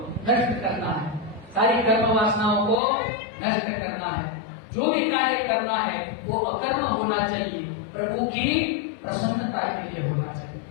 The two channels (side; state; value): right; drops out; at 2.8 s